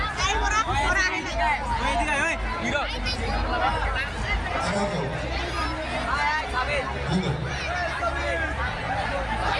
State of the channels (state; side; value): identical; both; correlation 1.00